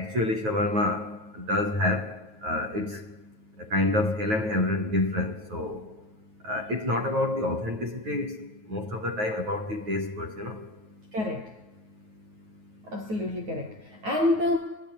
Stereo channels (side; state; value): left; late; 9.3 ms